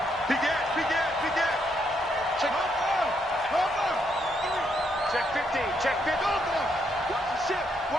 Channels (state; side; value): normal; both; correlation 0.76